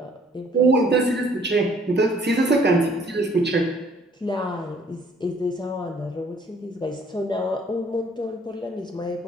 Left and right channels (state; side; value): normal; both; correlation 0.60